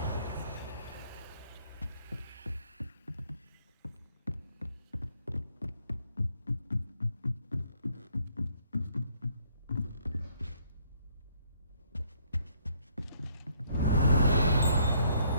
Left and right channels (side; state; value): both; inverted; correlation -0.67